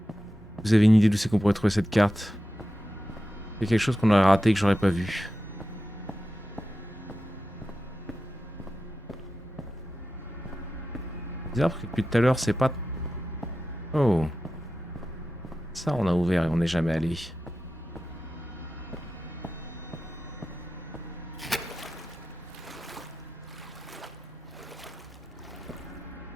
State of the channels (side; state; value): both; normal; correlation 0.92